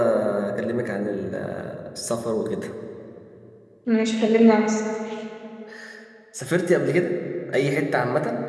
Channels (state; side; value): identical; both; correlation 1.00